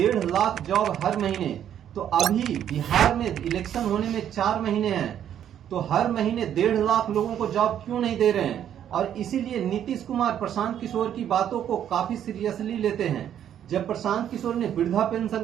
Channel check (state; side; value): quieter; left; 10.0 dB